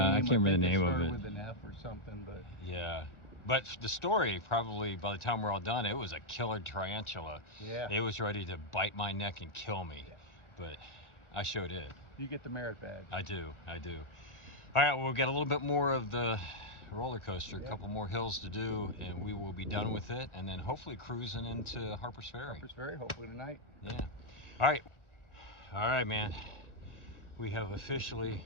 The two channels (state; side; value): late; right; 1.4 ms